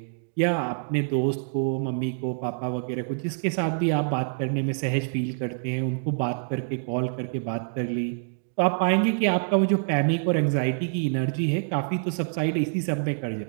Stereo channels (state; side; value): silent; left; digital silence